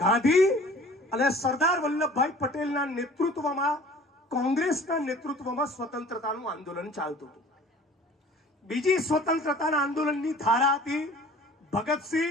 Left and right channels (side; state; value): both; normal; correlation 0.48